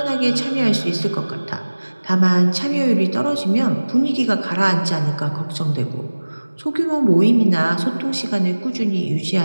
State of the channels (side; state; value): both; inverted; correlation -1.00